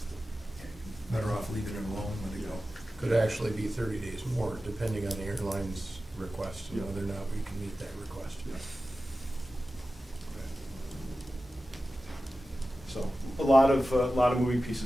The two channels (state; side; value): normal; both; correlation 0.94